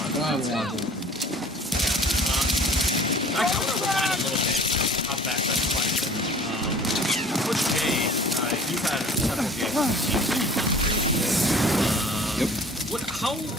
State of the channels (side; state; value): both; normal; correlation 0.48